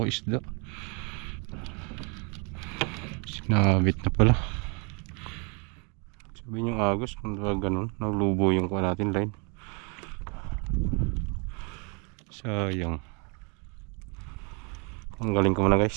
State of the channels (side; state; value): left; quieter; 34.1 dB